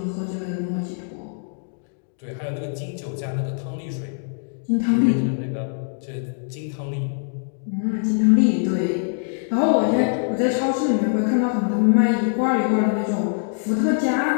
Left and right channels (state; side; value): silent; right; digital silence